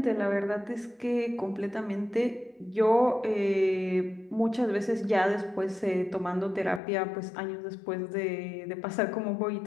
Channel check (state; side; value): drops out; right; at 6.8 s